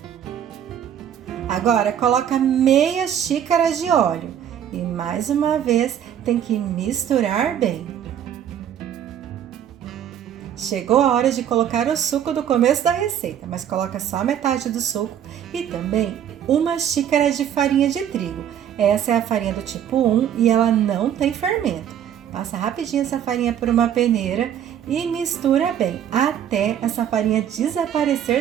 Agora coloca meia xícara de óleo e mais uma vez tem que misturar bem. Chegou a hora de colocar o suco do começo da receita, mas coloca só metade do suco e também uma xícara de farinha de trigo. Essa é a farinha do tipo 1 e ela não tem fermento. Passa rapidinho essa farinha por uma peneira e mistura bem até essa farinha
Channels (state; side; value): quieter; left; 9.7 dB